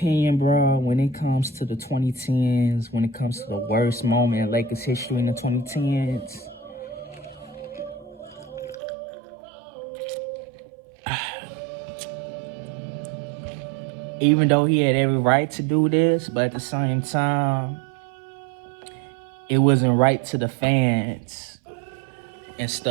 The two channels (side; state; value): left; drops out; at 8.8 s